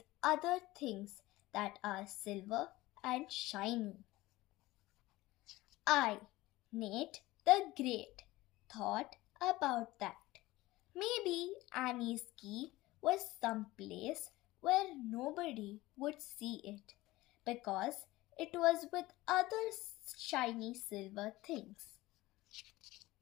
other things that are silver and shiny. I, Nate the Great, thought about that. Maybe Annie's key was someplace where nobody would see it because it was with other shiny silver things.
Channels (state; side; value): quieter; right; 18.5 dB